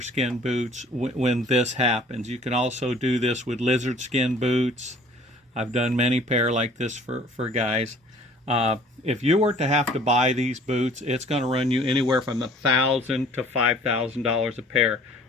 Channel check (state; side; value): normal; both; correlation 0.52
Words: boots when this happens. You can also do this with lizard skin boots. I've done many pair like this for guys. If you were to have to buy these boots, it's going to run you anywhere from $1,000 to $5,000 a pair,